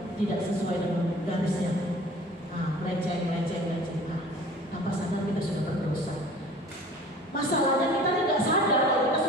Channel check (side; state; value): both; normal; correlation 0.46